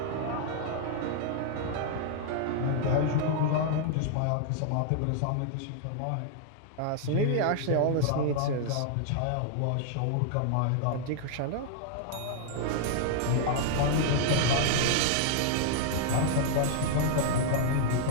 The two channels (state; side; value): different; both; correlation -0.01